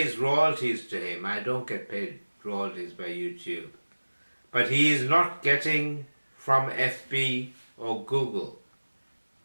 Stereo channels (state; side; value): inverted; both; correlation -1.00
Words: royalties to him. I don't get paid royalties by YouTube. But he is not getting from FB or Google.